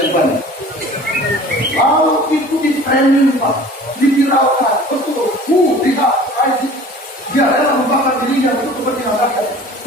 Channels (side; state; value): both; normal; correlation 0.45